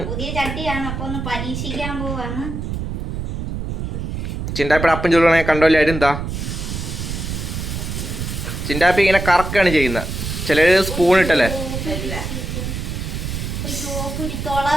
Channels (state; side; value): noise; right; rumble, 5 dB below the sound